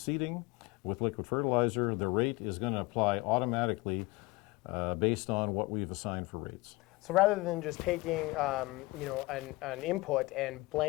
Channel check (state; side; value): quieter; right; 22.4 dB